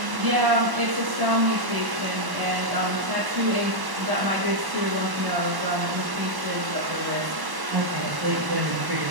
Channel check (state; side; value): late; left; 1.1 ms